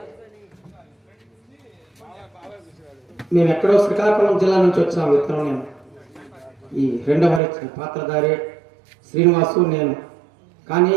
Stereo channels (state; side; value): drops out; left; at 7.4 s